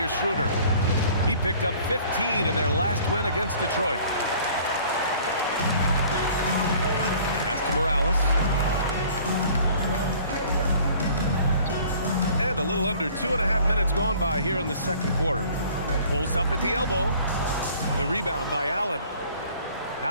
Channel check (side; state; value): both; inverted; correlation -0.52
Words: Schroeder. He picked up 15 in their last win against Detroit. Pass to Morales. And a little under 2.5 minutes gone by here in the second quarter. Pulls up at the elbow. The rebound by Allen.